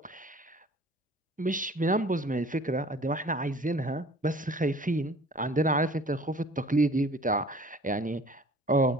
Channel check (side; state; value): both; normal; correlation 0.49